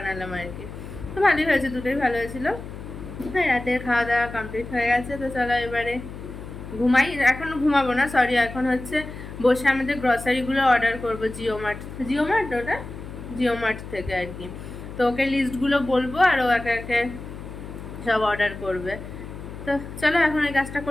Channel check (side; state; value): left; noise; hum, 12 dB below the sound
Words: আর কি। তো ভালোই হয়েছে, দুটোই ভালো হয়েছিল। হ্যাঁ রাতের খাওয়া দাওয়া কমপ্লিট হয়ে গেছে। তো চলো এবারে ঘুমাই। এখন ঘুমাবো না, সরি, এখন হচ্ছে বসে আমাদের গ্রসারিগুলো অর্ডার করবো জিও মার্ট ওটা জিও মার্ট থেকে আর কি। তো ওকে লিস্টগুলো বলবো আর ও একে একে সব অর্ডার করবে। তো চলো এখন এই কাজটা